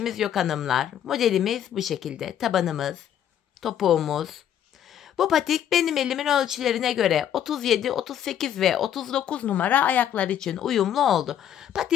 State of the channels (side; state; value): right; quieter; 10.0 dB